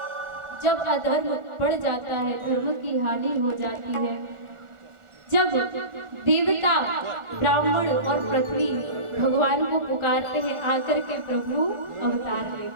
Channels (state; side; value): late; left; 1.4 ms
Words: जब अधर्म बढ़ जाता है, धर्म की हानि हो जाती है, जब देवता ब्राह्मण और पृथ्वी भगवान को पुकारते हैं, आकर के प्रभु अवतार